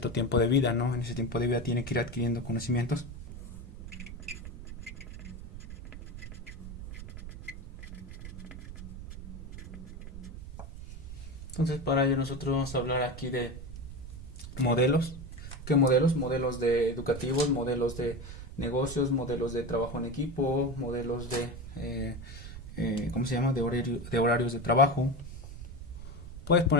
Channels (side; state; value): right; noise; rumble, 11 dB below the sound